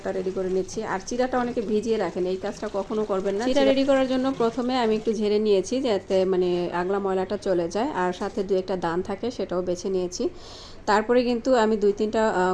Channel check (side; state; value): both; identical; correlation 1.00